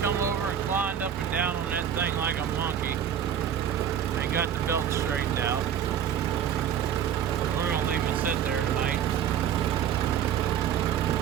over and climbed up and down on that thing like a monkey and got the belt straightened out. We're gonna leave it sit there tonight.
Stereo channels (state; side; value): quieter; left; 9.0 dB